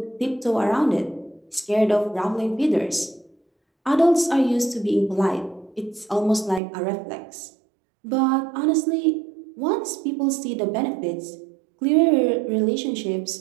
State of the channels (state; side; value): drops out; left; at 6.6 s